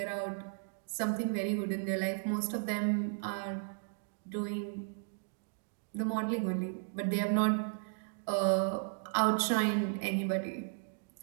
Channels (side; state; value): left; silent; digital silence